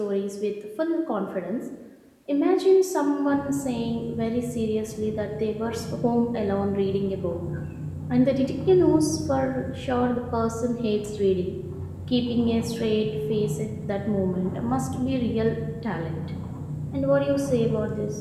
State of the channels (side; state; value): both; identical; correlation 1.00